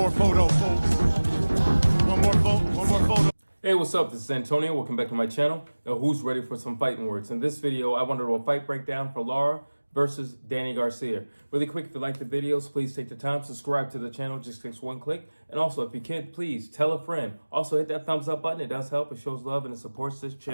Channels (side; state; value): both; inverted; correlation -1.00